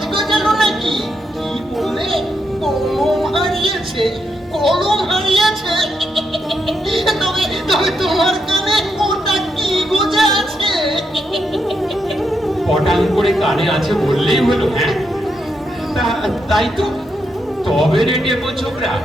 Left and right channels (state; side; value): normal; both; correlation 0.81